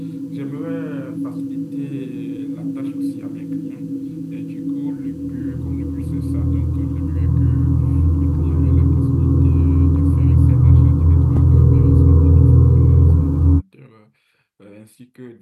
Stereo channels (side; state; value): both; identical; correlation 1.00